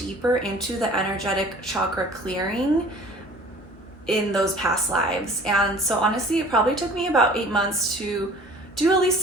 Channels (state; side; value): normal; both; correlation 0.48